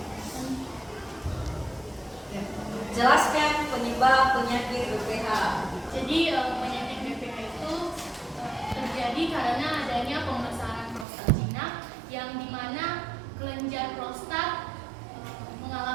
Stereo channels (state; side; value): drops out; left; at 11.1 s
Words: Jelaskan penyebab penyakit BPH. Jadi penyakit BPH itu terjadi karena adanya pembesaran prostat jinak yang dimana kelenjar prostat